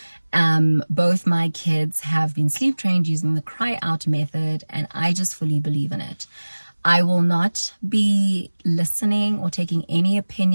Both my kids have been sleep trained using the cry out method, and I just fully believe in it. I will not be listening or taking any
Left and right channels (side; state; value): both; inverted; correlation -1.00